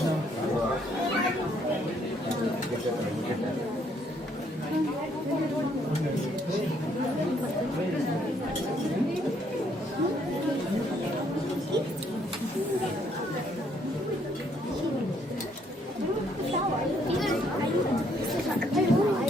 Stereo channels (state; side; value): normal; both; correlation 0.68